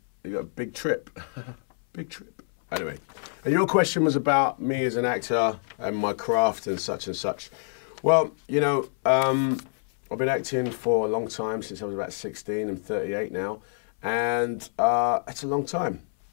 you got a big trip, big trip. Anyway, and your question was about me as an actor and my craft and such and such. Well, you know, I've been acting for a long time, since I was about 16. I'm 38 now, and it's a long time.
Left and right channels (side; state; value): right; silent; 60 dB below the other